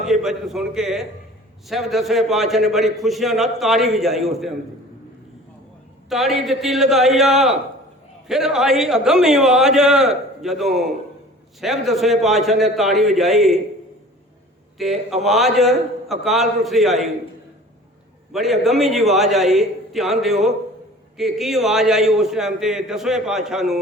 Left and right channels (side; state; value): both; normal; correlation 0.45